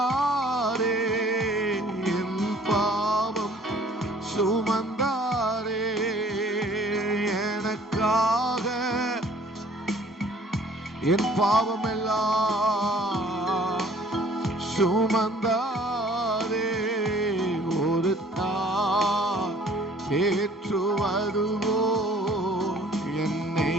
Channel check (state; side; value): normal; both; correlation 0.55